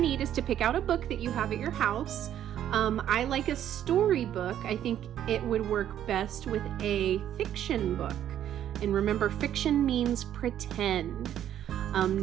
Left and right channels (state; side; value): quieter; left; 10.8 dB